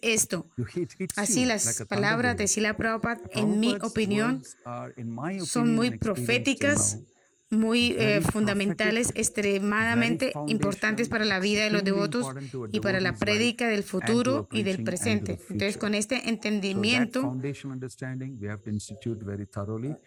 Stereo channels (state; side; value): identical; both; correlation 1.00